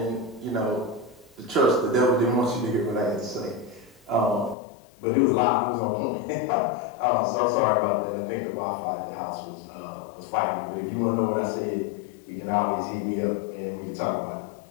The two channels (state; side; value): drops out; right; at 4.5 s